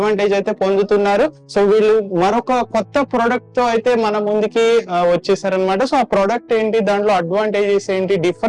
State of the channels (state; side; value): identical; both; correlation 1.00